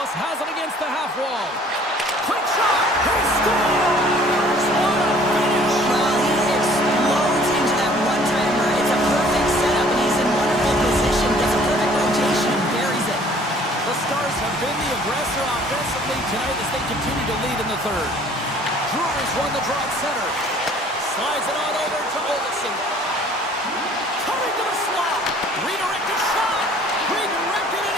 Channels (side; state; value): both; normal; correlation 0.54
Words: has it against the half wall. Quick shot! He scores! What a finish! Well, he explodes into that one-timer. It's a perfect setup, and he's in wonderful position. Gets a perfect rotation and buries it. The Stars have been the aggressor offensively tonight as they continue to lead in the third. Brewers won the draw at center. Slides it on over to Olsen. Coming to the slot. Redirected shot. Redirected, and